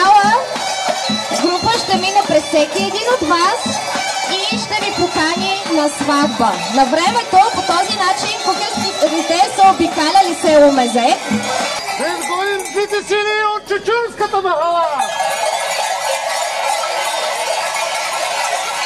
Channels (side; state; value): both; identical; correlation 1.00